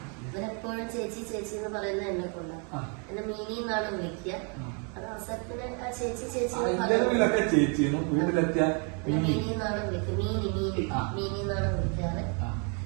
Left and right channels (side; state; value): left; quieter; 37.8 dB